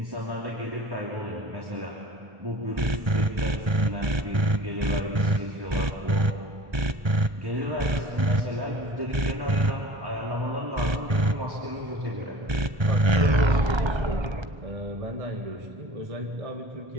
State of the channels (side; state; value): left; late; 1.3 ms